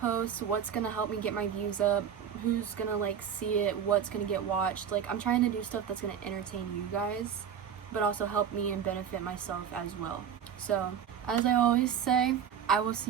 what's gonna help me get my views up, who's gonna like see it, what's gonna get watched. Like, I'm trying to do stuff that's gonna entertain you guys, but also help me and benefit myself as well. So, as I always say, I will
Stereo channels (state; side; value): quieter; left; 8.2 dB